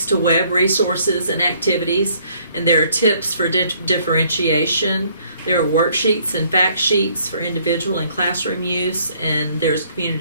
to web resources and activities, and there are tips for differentiation. There are worksheets and fact sheets for individual and classroom use, and there's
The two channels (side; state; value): both; inverted; correlation -0.63